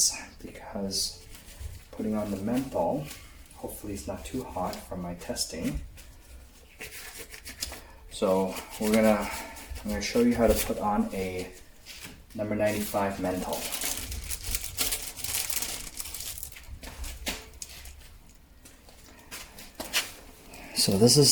because putting on the mantle, hopefully it's not too hot from my testing. So I'm gonna show you how to put on a number 95 mantle. So this is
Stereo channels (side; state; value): both; identical; correlation 1.00